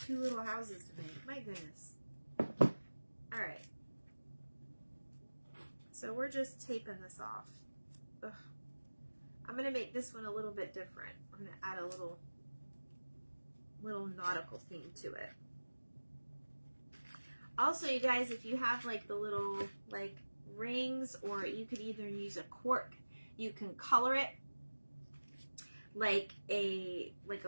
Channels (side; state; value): both; inverted; correlation -1.00